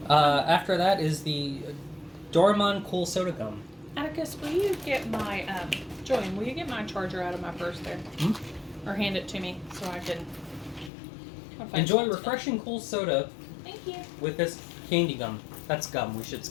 After that is the Doraemon Cool Soda Gum. Atticus, will you get my Julian? Will you get my charger out of my purse there, or hand it to me so I can? I'll find Enjoy something. refreshing cool soda Thank you. with this candy gum. That's gum. We should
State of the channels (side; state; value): right; drops out; at 10.9 s